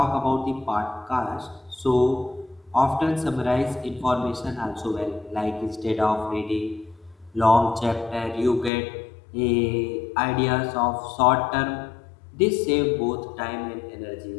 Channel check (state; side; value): drops out; right; at 8.7 s